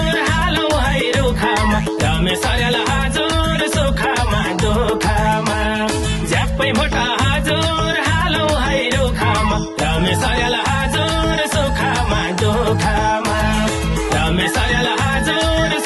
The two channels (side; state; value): both; identical; correlation 1.00